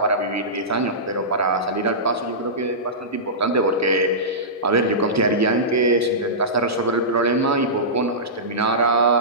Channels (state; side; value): normal; both; correlation -0.18